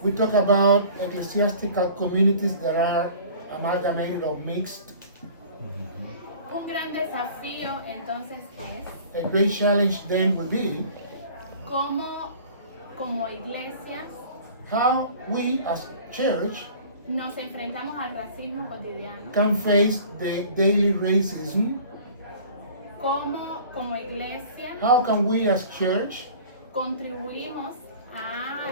we talk about ecclesiastical communities that are amalgamated or mixed. Un gran desafío entonces es A great challenge then will be cómo como iglesias how we as church nos enfrentamos al racismo cotidiano, can face the daily racism. cómo como iglesia How can we as church contribuimos a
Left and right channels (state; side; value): inverted; both; correlation -0.46